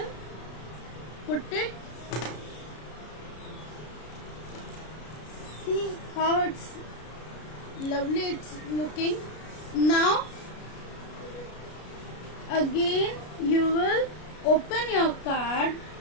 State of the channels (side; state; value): right; late; 33 ms